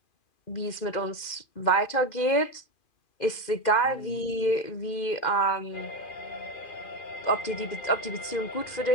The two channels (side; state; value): right; late; 2.4 ms